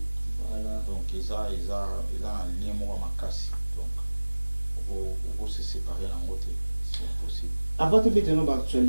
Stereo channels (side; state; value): both; inverted; correlation -1.00